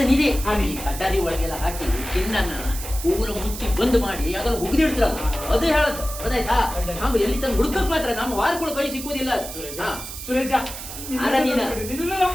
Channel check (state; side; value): noise; right; hiss, 10 dB below the sound